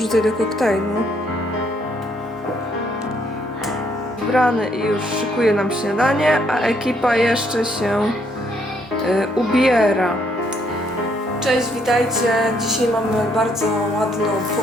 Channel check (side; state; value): both; normal; correlation 0.70